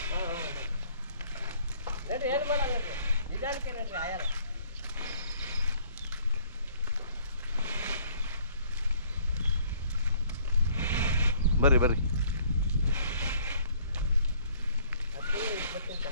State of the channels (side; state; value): both; inverted; correlation -0.59